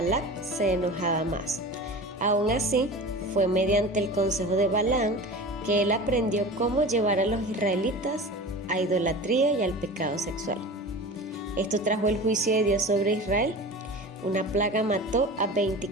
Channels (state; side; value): normal; both; correlation 0.34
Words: se enojaba más. Aún así, fue mediante el consejo de Balaam que él aprendió cómo llevar a los israelitas a idolatría y al pecado sexual. Esto trajo el juicio de Dios sobre Israel. Una plaga mató a